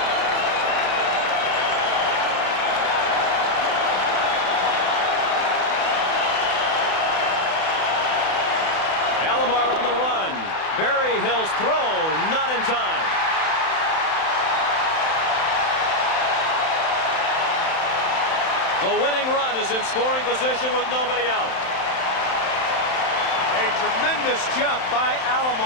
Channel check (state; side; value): late; right; 31 ms